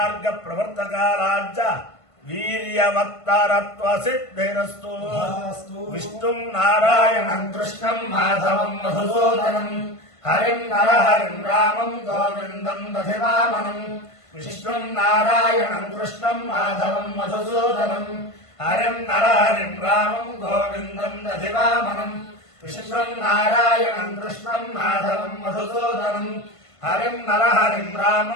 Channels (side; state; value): right; late; 1.5 ms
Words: ప్రవర్తకారాజ్య వీర్యవత్తరత్వ సిద్ధిరస్తు విష్ణుం నారాయణం కృష్ణం మాధవం మధుసూదనం హరిం నరహరిం రామం గోవిందం దధివామనం విష్ణుం నారాయణం కృష్ణం మాధవం మధుసూదనం హరిం నరహరిం రామం గోవిందం దధివామనం విష్ణుం నారాయణం కృష్ణం మాధవం మధుసూదనం హరిం నరహరిం